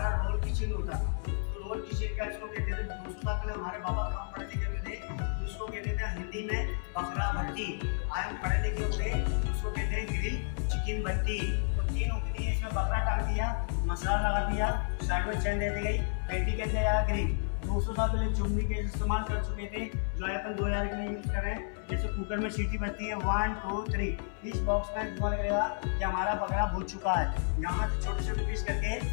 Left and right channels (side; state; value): right; silent; 57 dB below the other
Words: रोल किचन होता था, रोल किचन का इसको कहते थे। 200 साल पहले हमारे बाबा काम पढ़े लिखे हुए थे, उसको कहते थे हिंदी में बकरा भट्टी। आज हम पढ़े लिखे हुए उसको कहते हैं ग्रिल चिकन भट्टी। तो 3 उंगली है, इसमें बकरा काट दिया, मसाला लगा दिया, साइड में चैन दे दी गई, पेटी कहते हैं ग्रिल। 200 साल पहले चुम्बी के इस्तेमाल कर चुके थे, जो अपन 2000 के लिए यूज कर रहे हैं। जैसे कुकर में सीटी बजती है 1 2 3, इस बॉक्स में धुआं लगेगा कि हमारा बकरा भून चुका है। यहाँ से छोटे छोटे पीस करके